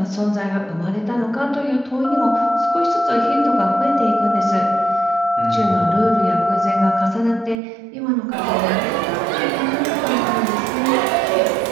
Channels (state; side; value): drops out; left; at 7.6 s